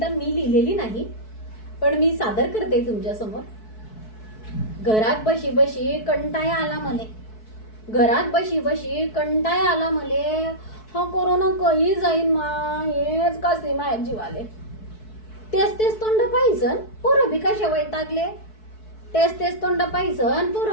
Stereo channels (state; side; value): late; right; 4.6 ms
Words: मी लिहिलेली नाही, पण मी सादर करते तुमच्यासमोर. घरात बशी बशी कंटाळा आला मले, घरात बशी बशी कंटाळा आला मले, हा कोरोना कधी जाईन मा, हेच कसे माझ्या जीवाले. तेच तेच तोंड पाहिजन पोरं बी कशा वैतागले, तेच तेच तोंड पाहिजन